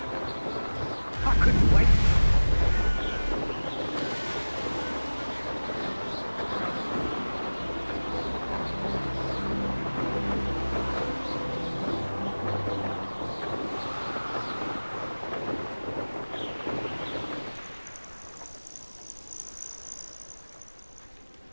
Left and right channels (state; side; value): inverted; both; correlation -1.00